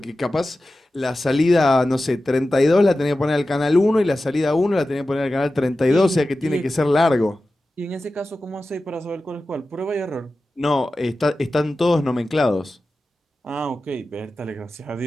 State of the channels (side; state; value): both; normal; correlation 0.94